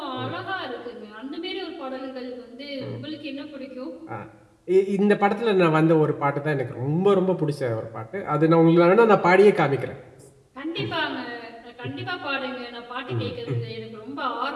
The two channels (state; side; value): identical; both; correlation 1.00